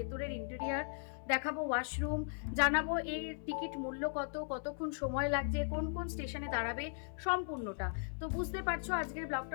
ইন্টেরিয়ার, দেখাবো ওয়াশরুম, জানাবো এর টিকিট মূল্য কত, কতক্ষণ সময় লাগছে, কোন কোন স্টেশনে দাঁড়াবে, সম্পূর্ণটা। তো বুঝতে পারছো আজকের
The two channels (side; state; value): right; silent; 53 dB below the other